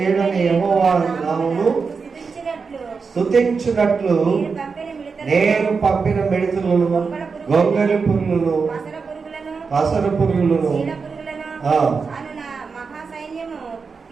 యెహోవా నామమును స్తుతించునట్లు నేను పంపిన మిడతలను, గొంగళి పురుగులను, పసర పురుగులను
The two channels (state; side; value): quieter; left; 5.1 dB